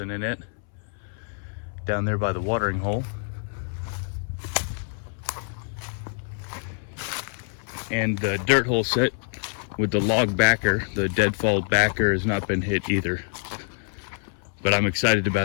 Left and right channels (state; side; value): silent; right; 61 dB below the other